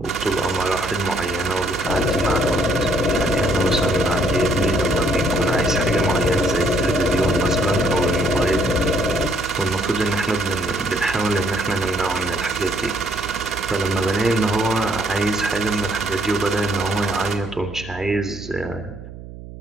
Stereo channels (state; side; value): noise; right; hum, 14 dB below the sound